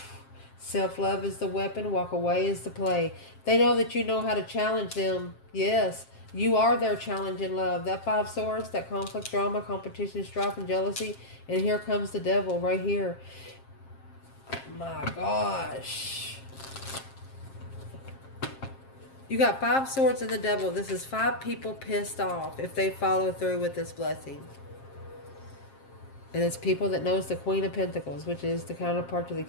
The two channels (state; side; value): late; right; 7.5 ms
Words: Self-love is the weapon, walk away is the play. They know that you know how to challenge them. Yes, you are their challenge in love. That 5 swords, that conflict, drama, competition, strife, and jealousy. And here comes the devil right here. My gosh. You got 5 swords and the devil. This is 5 people pissed off if they follow through with this blessing. And it's people that knows the Queen of Pentacles, which is the counterpart to the